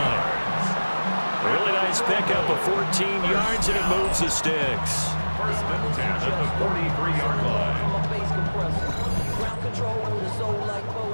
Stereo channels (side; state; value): both; inverted; correlation -1.00